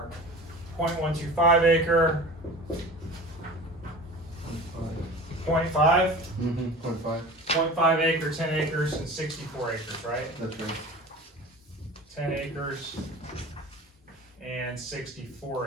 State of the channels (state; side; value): normal; both; correlation 0.37